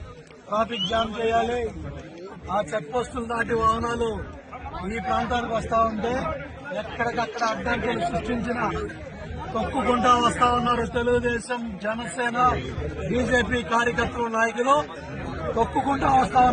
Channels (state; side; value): identical; both; correlation 1.00